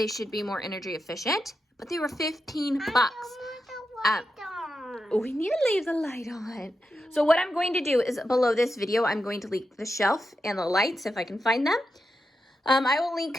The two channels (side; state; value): both; normal; correlation 0.88